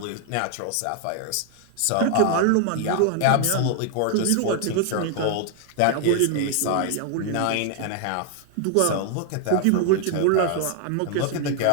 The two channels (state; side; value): different; both; correlation 0.00